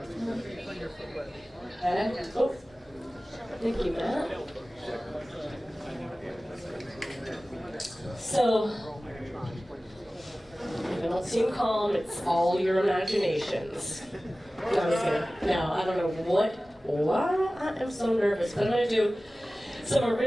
thank you, Matt. So, if I don't seem calm, it's all your imaginations. No, I'm just kidding. No, I don't know why I am so nervous, but I'm going to do some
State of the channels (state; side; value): normal; both; correlation 0.97